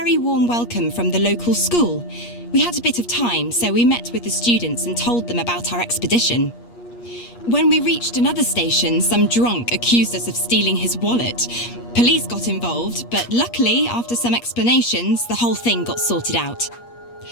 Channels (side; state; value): right; late; 8.5 ms